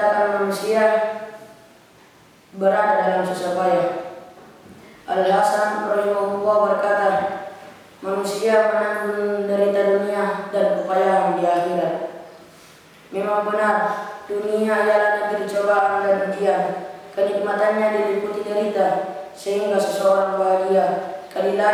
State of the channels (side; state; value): both; identical; correlation 1.00